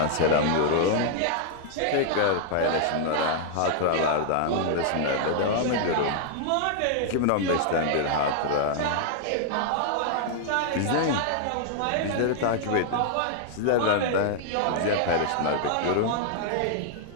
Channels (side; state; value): both; different; correlation -0.01